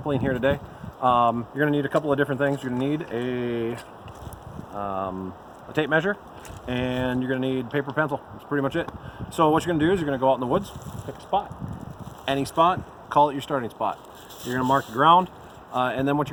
here today. You're going to need a couple of different things. You're going to need a tape measure, and you're going to need paper pencil. That's pretty much it. So what you're going to do is you're going to go out in the woods, pick a spot, any spot, call it your starting spot. You're going to mark the ground, and then what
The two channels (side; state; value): both; identical; correlation 1.00